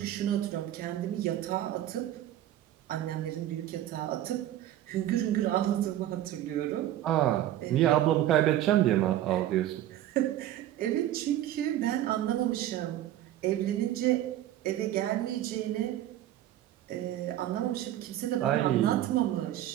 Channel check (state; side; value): quieter; left; 12.9 dB